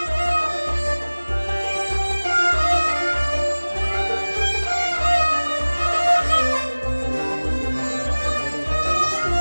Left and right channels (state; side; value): inverted; both; correlation -1.00